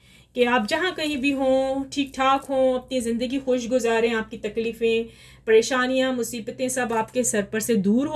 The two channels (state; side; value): identical; both; correlation 1.00